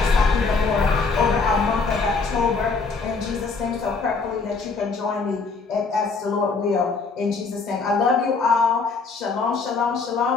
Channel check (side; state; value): right; quieter; 4.4 dB